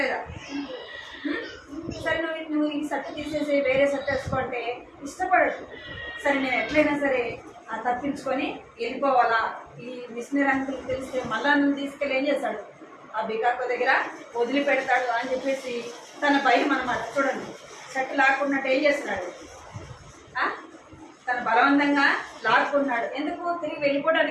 సరే నువ్వు ఈ షర్ట్ తీసేసి వేరే షర్ట్ వేసుకోంటే ఇష్టపడదు. సరే నేను ఎట్లయినా సరే తప్పించుకొని వెళ్ళిపోవాలా, ఈ మిషనరీ అంకుల్ తెలిస్తే మళ్ళా నువ్వు తీసుకెళ్ళి ఏం చేస్తాడు, ఆ బికాకో దగ్గర వదిలిపెడతాడు అని చెప్పేసి తన భయం అనమాట. చూడండి షర్ట్ లాక్కున్నట్టు ఏం చేస్తున్నాడు, తన బలవంతంగా లాక్కున్నాడు. ఎందుకు, తిరిగి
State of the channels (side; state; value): both; identical; correlation 1.00